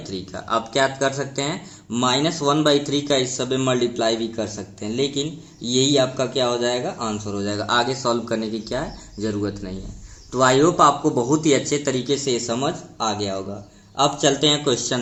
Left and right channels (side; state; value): both; identical; correlation 1.00